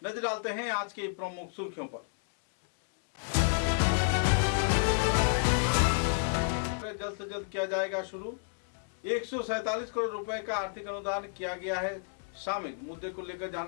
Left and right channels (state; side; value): silent; right; digital silence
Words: नजर डालते हैं आज की प्रमुख सुर्खियों पर। जल्द से जल्द किया जाएगा शुरू। 147 करोड़ रुपए का आर्थिक अनुदान किया गया है शामिल। मुद्दे को लेकर